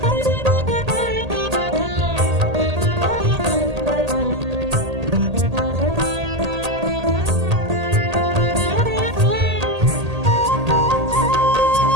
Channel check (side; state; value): left; late; 1.8 ms